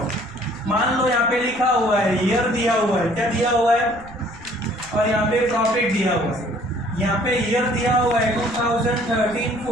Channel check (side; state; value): right; noise; rumble, 19 dB below the sound